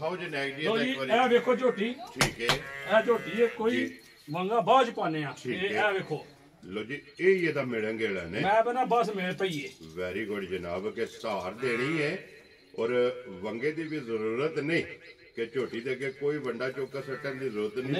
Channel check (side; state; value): both; identical; correlation 1.00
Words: ਜੀ ਨੈਕ ਦੀ ਲੋ ਜੀ ਇੱਕ ਵਾਰੀ ਇਹ ਵੇਖੋ ਝੋਟੀ ਠੀਕ ਹੈ ਇਹ ਝੋਟੀ ਹੈ ਕੋਈ ਮੰਗਾ ਬਾਜ ਪਾਣੇ ਆ ਠੀਕ ਇਹ ਹੈ। ਇਹ ਵੇਖੋ ਲੋ ਜੀ ਇਹ ਇਹਦਾ ਮਿਲਣ ਗਿਲਣ ਨੇ ਮੈਂ ਬਣਾ ਬਸ ਮੇਰੇ ਪਈਏ ਵੈਰੀ ਗੁੱਡ ਜਨਾਬ ਕਿ ਸਹਾਰ ਦੇਣੀ ਹੈ ਔਰ ਵੰਗੇ ਦੀ ਵੀ ਜ਼ਰੂਰਤ ਨਹੀਂ ਕਿ ਝੋਟੀ ਦੇ ਅੱਗੇ ਕੋਈ ਵੰਡਾ ਚੌਕਾ ਸੱਟਣ ਦੀ ਜ਼ਰੂਰਤ ਨਹੀਂ